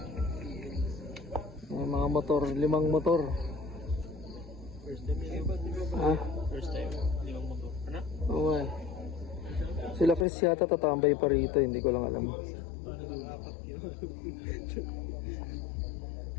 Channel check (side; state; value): right; drops out; at 10.2 s